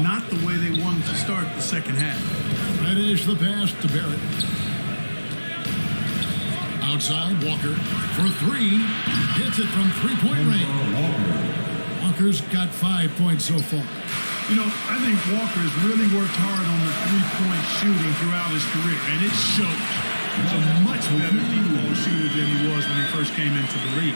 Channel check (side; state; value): both; inverted; correlation -1.00